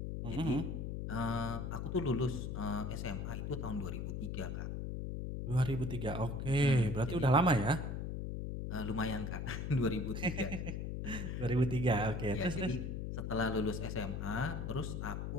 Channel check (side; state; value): left; noise; hum, 4 dB below the sound